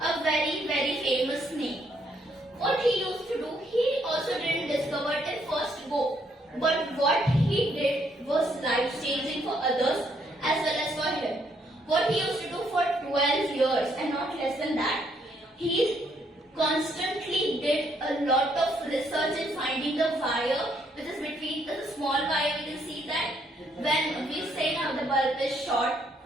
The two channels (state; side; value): normal; both; correlation 0.71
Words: a very, very famous name. What he used to do, he also didn't discover it in first go. But what he did was life-changing for others as well as for him. What he used to do for 12 years and not less than that, he constantly did a lot of research in finding the wire which is between the small wire. We can see that when we say now the bulb is short,